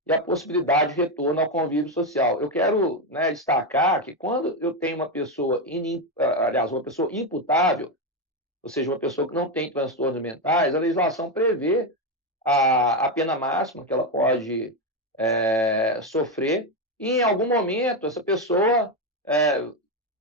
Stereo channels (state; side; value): normal; both; correlation 0.09